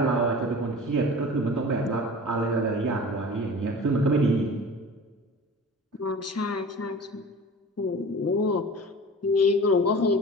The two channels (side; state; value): both; normal; correlation 0.39